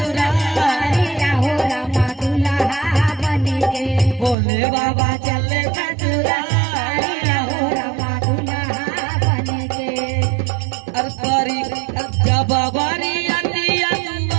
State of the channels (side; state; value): left; drops out; at 4.4 s